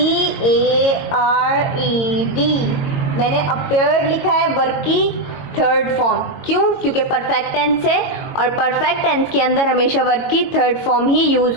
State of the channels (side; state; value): right; late; 22 ms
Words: मैंने अपेयर्ड लिखा है वर्ब की थर्ड फॉर्म, क्यों? क्योंकि परफेक्ट टेंस है और परफेक्ट टेंस के अंदर हमेशा वर्ब की थर्ड फॉर्म ही